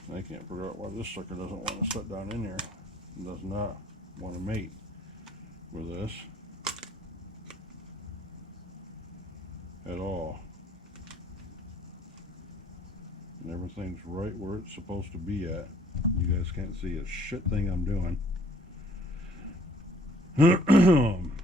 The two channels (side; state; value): both; normal; correlation 0.59